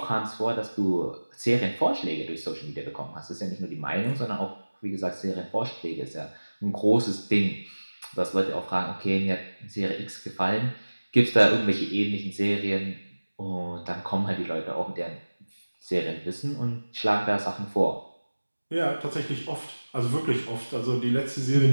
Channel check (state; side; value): inverted; both; correlation -1.00